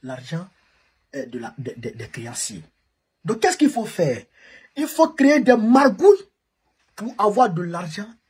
L'argent des créanciers. Donc, qu'est-ce qu'il faut faire? Il faut créer des margouilles pour avoir de l'argent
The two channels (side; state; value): both; identical; correlation 1.00